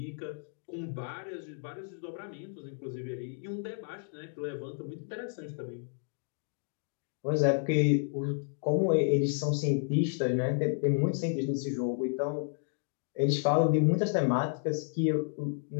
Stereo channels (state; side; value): silent; right; digital silence